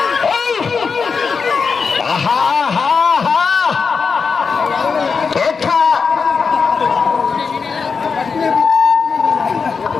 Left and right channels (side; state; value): right; quieter; 5.3 dB